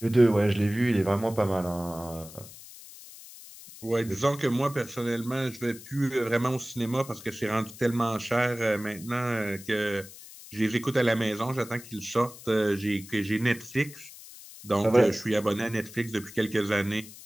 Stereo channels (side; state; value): left; noise; hiss, 17 dB below the sound